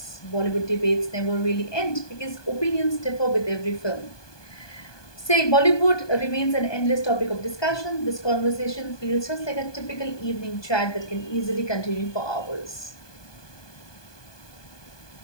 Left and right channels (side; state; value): right; late; 1.2 ms